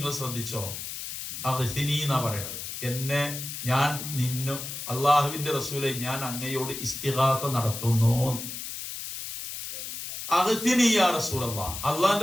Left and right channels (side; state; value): left; noise; hiss, 7 dB below the sound